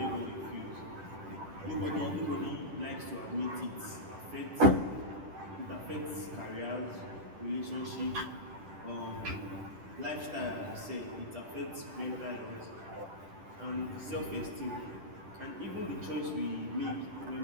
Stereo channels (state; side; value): late; left; 10 ms